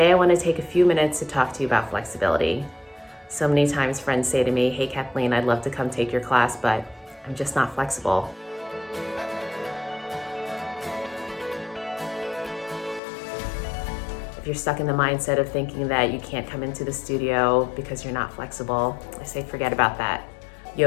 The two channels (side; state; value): right; drops out; at 13.0 s